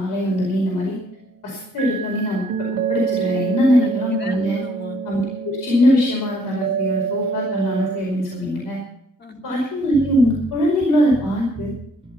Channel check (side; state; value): both; normal; correlation 0.64